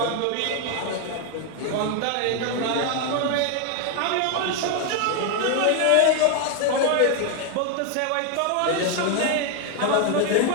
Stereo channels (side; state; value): both; different; correlation 0.01